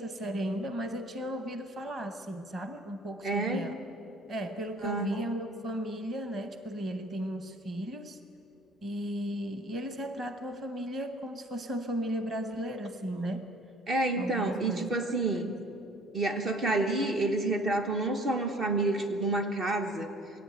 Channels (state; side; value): normal; both; correlation 0.51